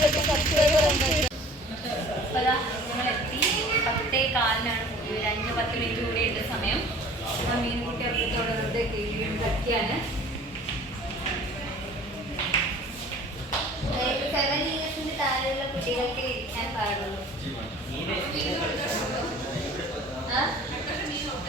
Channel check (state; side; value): normal; both; correlation 0.48